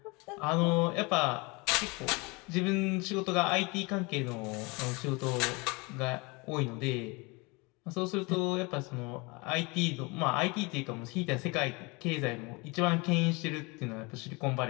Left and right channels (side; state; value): right; quieter; 27.0 dB